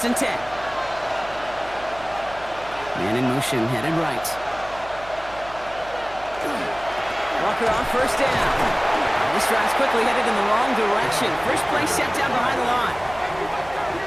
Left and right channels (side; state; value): right; noise; hum, 19 dB below the sound